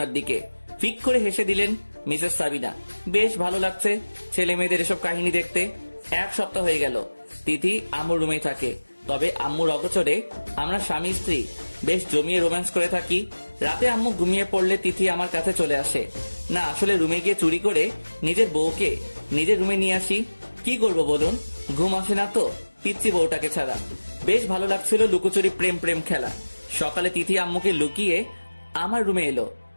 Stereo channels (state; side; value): inverted; both; correlation -1.00